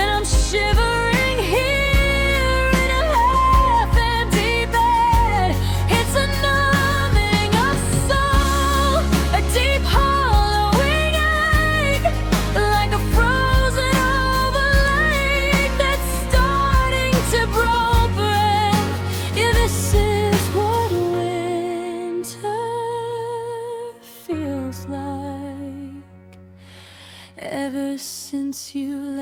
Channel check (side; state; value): both; identical; correlation 1.00